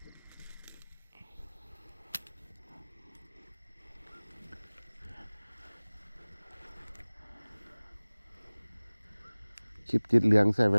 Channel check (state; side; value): inverted; both; correlation -1.00